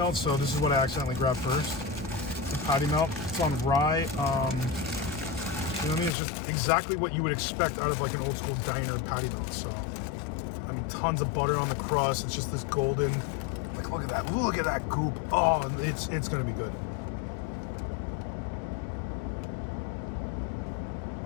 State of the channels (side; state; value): right; drops out; at 6.1 s